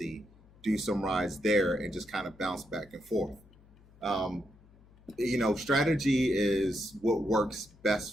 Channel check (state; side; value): noise; left; hum, 26 dB below the sound